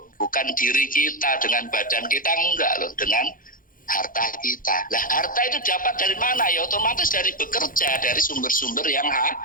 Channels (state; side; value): late; right; 0.40 ms